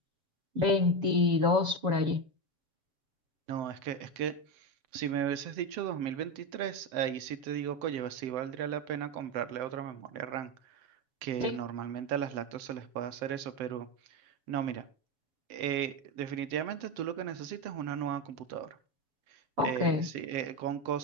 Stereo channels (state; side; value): late; left; 7.8 ms